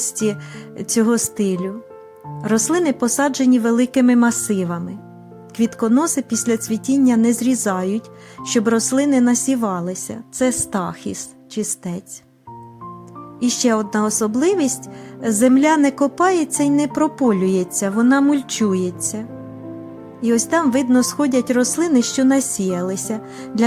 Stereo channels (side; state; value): both; identical; correlation 1.00